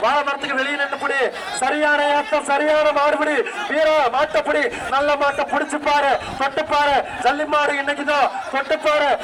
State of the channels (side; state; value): both; identical; correlation 1.00